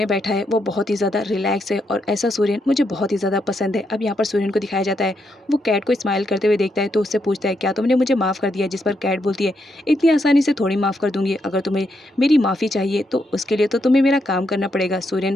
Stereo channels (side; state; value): both; normal; correlation 0.80